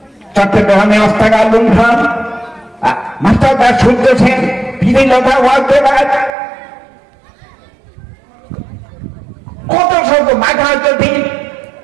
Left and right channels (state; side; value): drops out; left; at 6.3 s